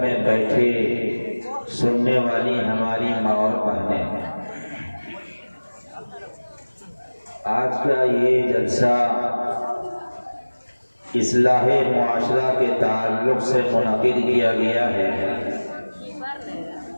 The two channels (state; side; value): inverted; both; correlation -1.00